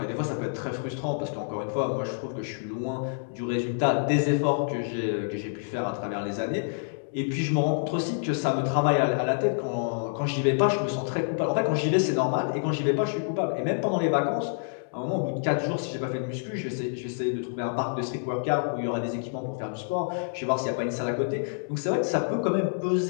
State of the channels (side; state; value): right; silent; digital silence